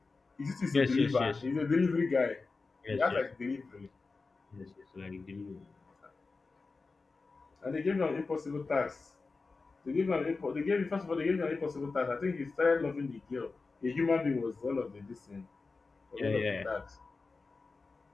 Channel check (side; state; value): right; quieter; 4.0 dB